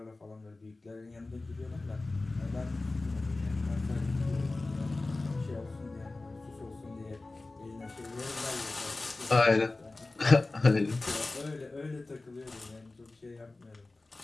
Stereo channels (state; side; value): quieter; right; 3.2 dB